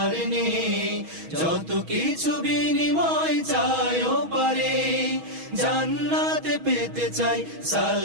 নেই, যত কিছু বিনিময় চাইও পারে। জান্নাতে পেতে চাই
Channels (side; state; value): left; late; 6.2 ms